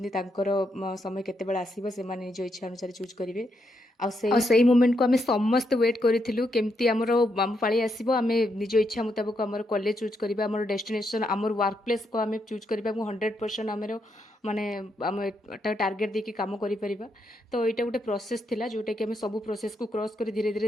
ତାଙ୍କର ସମୟ କେତେବେଳେ ଆସିବ ସେମାନେ ନିଜ ଇଚ୍ଛା ଅନୁସାରେ ଚୁଜ୍ କରିବେ। ଆଉ ସେଇ ମୋମେଣ୍ଟକୁ ଆମେ ସମସ୍ତେ ୱେଟ୍ କରିଥିଲୁ କେମିତି ଆମର ଆମ ପାଳି ଆସିବ, ଆମେ ନିଜ ଇଚ୍ଛା ମୁତାବକ ଆମର କଲେଜ ଚୁଜ୍ କରିବା, ଆମର ଡେଷ୍ଟିନେସନ୍ ଆମର ୱାର୍କ ପ୍ଲେସ୍କୁ ଆମେ ଚୁଜ୍ କରିବା ଏବଂ 100% ଆମର ମାନେ ଆମେ ଏଟା ଟାର୍ଗେଟ୍ ଦେଇକି କାମ କରିପାରିବା। ତ ଏଇଟା ଗୋଟେ ପ୍ରୋସେସ୍ ଥିଲା ଯେଉଁଟାକି ଆମେ ସବୁ ପ୍ରୋସେସ୍କୁ କ୍ରସ୍ କରି ଧୀରେ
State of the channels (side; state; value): both; normal; correlation 0.80